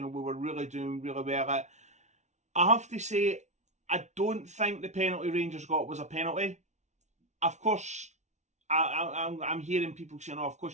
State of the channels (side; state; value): left; late; 0.33 ms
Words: know, we were really doing really well at. I have to say, I don't think the penalty Rangers got was a penalty. Of course, I'm hearing people saying, oh, of